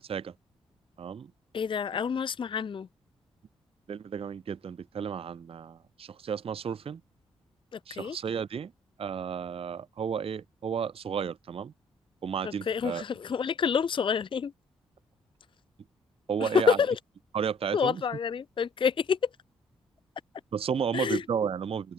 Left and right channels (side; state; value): both; normal; correlation 0.54